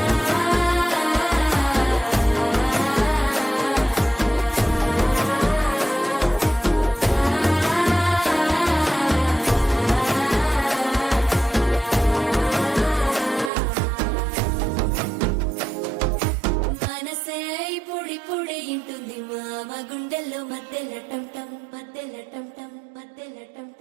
మనసే పొడి పొడి ఇంటుంది మామ గుండెల్లో మధ్యల టంటం మధ్యల టంటం మధ్యల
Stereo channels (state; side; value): drops out; left; at 13.5 s